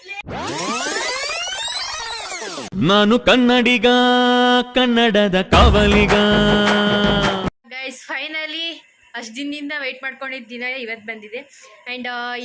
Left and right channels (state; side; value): identical; both; correlation 1.00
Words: ನಾನು ಕನ್ನಡಿಗ, ಕನ್ನಡದ ಕಾವಲಿಗ. ಗೈಸ್ ಫೈನಲಿ ಅಷ್ಟು ದಿನದಿಂದ ವೆಯ್ಟ್ ಮಾಡ್ಕೊಂಡಿದ್ದ ದಿನ ಇವತ್ತು ಬಂದಿದೆ. ಆ್ಯಂಡ್